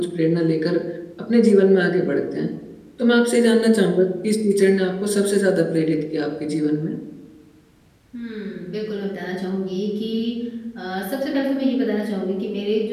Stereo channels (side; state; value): both; identical; correlation 1.00